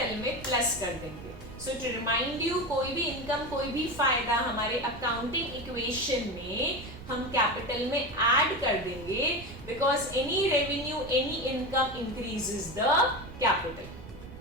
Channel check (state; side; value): noise; right; rumble, 15 dB below the sound